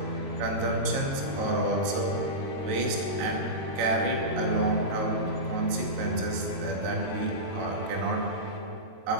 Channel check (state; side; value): late; left; 22 ms